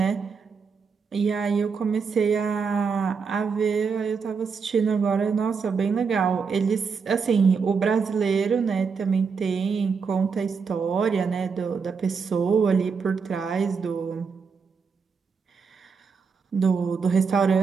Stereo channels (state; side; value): quieter; left; 5.5 dB